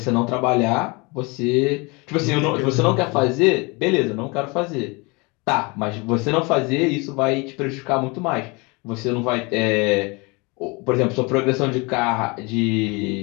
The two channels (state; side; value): quieter; right; 27.7 dB